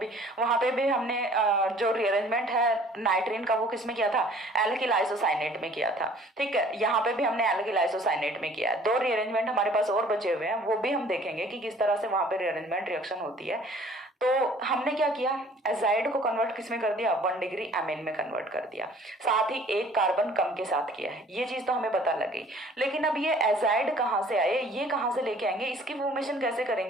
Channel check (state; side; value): normal; both; correlation 0.53